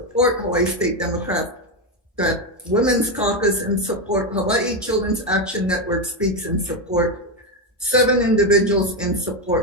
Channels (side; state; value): both; normal; correlation 0.09